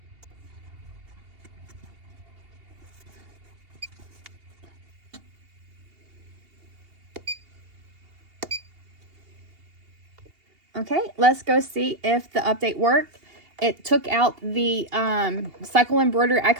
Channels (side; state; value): left; late; 2.8 ms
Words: Okay, let's go see if the update worked. It took out the cycle embroidery